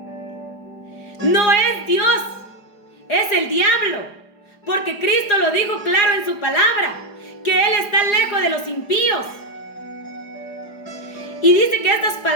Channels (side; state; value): right; late; 4.8 ms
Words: no es Dios, es el diablo, porque Cristo lo dijo claro en su palabra, que Él está lejos de los impíos. Y dice que estas